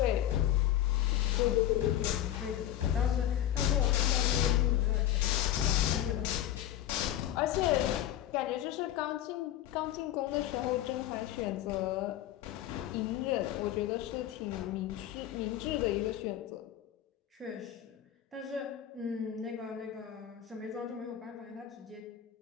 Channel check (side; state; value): right; quieter; 12.1 dB